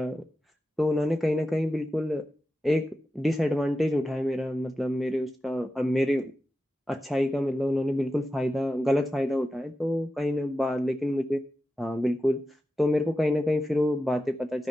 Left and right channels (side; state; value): both; normal; correlation 0.92